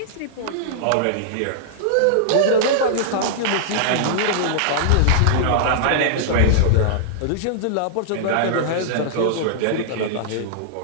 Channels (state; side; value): different; both; correlation -0.01